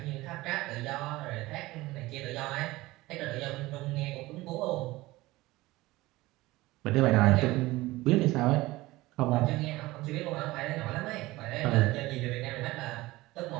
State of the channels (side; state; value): left; quieter; 19.3 dB